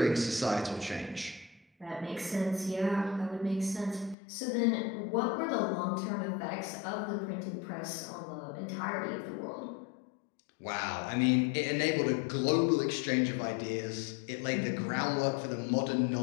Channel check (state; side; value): drops out; right; at 4.2 s